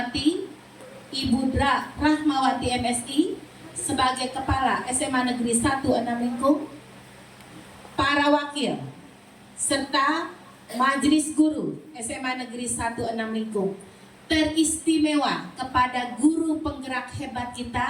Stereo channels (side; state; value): both; identical; correlation 1.00